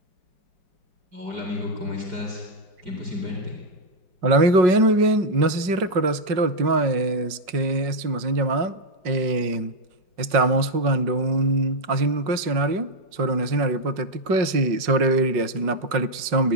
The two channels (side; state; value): left; late; 5.4 ms